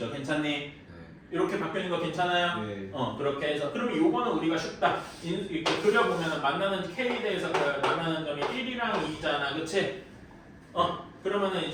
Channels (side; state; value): both; identical; correlation 1.00